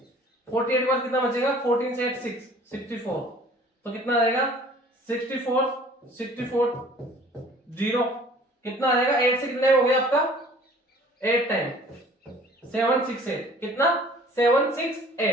48 के बाद कितना बचेगा 14 से 8 6 64, तो कितना आ जाएगा 64 64 0, कितना आ जाएगा 8 से कितना हो गया आपका 8 टाइम 768, कितना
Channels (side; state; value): both; normal; correlation 0.51